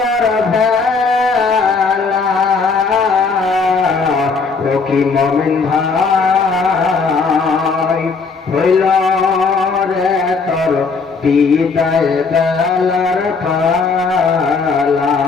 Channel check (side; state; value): right; quieter; 4.7 dB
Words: ভেলা। ও কি মুমিন ভাই হইল রে তোর বিদায় বেলার পালা।